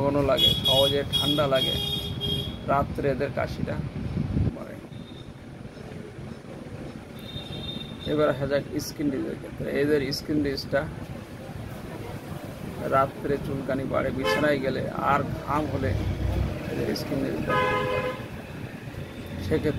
ঘন লাগে, সহজে ঠান্ডা লাগে, রাত্রে এদের কাশিটা বাড়ে। এবার আসা যাক স্কিন ডিজিজের ক্ষেত্রে। এদের স্কিন ডিজিজটা রাত্রে চুলকানি বাড়ে, বিছানায় গেলে আর ঘাম হলে এদের স্কিন ডিজিজটা বাড়ে।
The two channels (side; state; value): both; identical; correlation 1.00